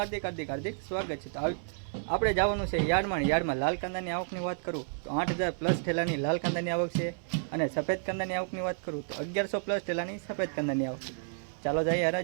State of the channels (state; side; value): silent; left; 57 dB below the other